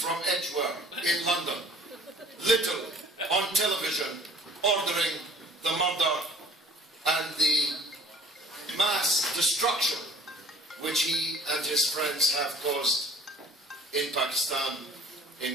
Edgware in London, literally on television, ordering the murder and the mass destruction which he and his friends have caused in Pakistan,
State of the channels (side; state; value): both; normal; correlation 0.51